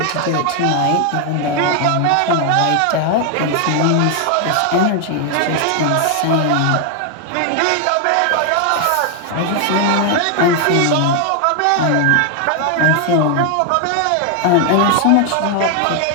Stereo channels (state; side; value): different; both; correlation 0.01